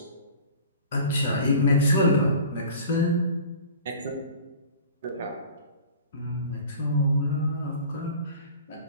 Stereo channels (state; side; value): inverted; both; correlation -0.42